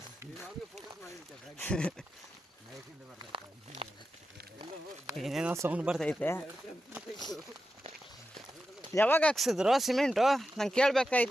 ಏನೇನೋ ಸೌಂಡ್ ಬರ್ತೈತೆ. ಯಾವಾಗ ಹಾಕ್ಸಿದ್ರು ಸಿಮೆಂಟು? ನಂಗೆ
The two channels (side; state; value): both; normal; correlation 0.91